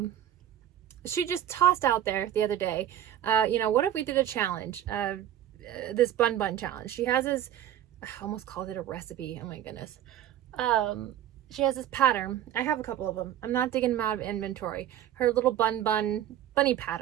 she just tossed out there the other day, you know, what if we did a challenge, this bun challenge. She has this, I almost called it a recipe, oh my goodness. She has this pattern. I have a couple of them. I'm not digging them out of inventory. Her little bunny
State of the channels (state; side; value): quieter; left; 11.3 dB